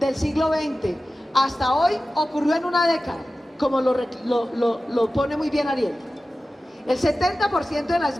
hasta hoy, ocurrió en una década, como lo pone muy bien Ariel. El 70% de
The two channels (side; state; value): both; normal; correlation 0.95